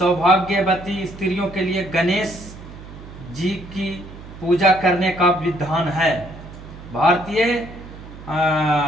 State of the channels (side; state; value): right; noise; hum, 15 dB below the sound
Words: स्त्रियों के लिए गणेश जी की पूजा करने का विधान है। भारतीय